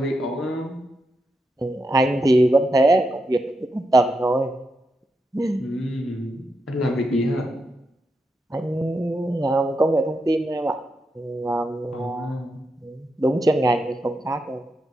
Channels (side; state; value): both; normal; correlation 0.84